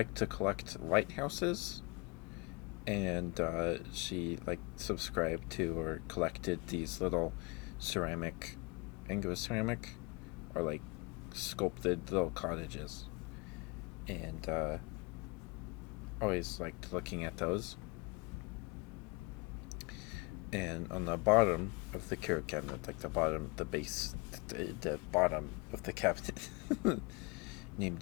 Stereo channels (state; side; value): quieter; right; 28.4 dB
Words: to collect lighthouses, and she like subscribed to or collected these little ceramic, I think it was ceramic, or like sculpted little cottages, and always liked looking at those. And on the bottom of the curio cabinet, like the bottom, the base, the bottom of the cabinet, named